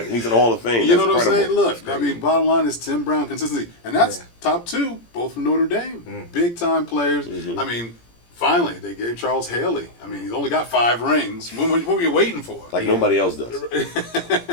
He's in the Hall of Fame. You know That's what I'm saying? incredible. Look, I mean, bottom line is Tim Brown consistency, and that's top 2, both from Notre Dame, big time players. I mean, finally they gave Charles Haley. I mean, he's only got 5 rings. What were you waiting for? Like nobody else does.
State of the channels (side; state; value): right; late; 17 ms